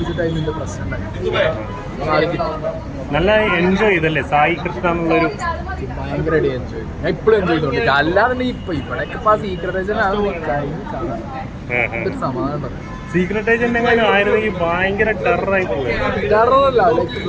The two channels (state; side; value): identical; both; correlation 1.00